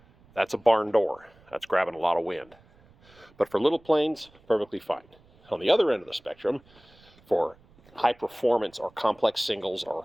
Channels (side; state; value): right; noise; rumble, 29 dB below the sound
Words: that's a barn door. That's grabbing a lot of wind. But for little planes, perfectly fine. On the other end of the spectrum, for high performance or complex singles or